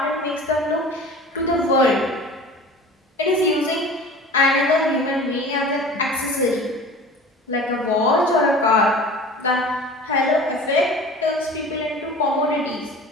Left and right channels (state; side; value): normal; both; correlation 0.40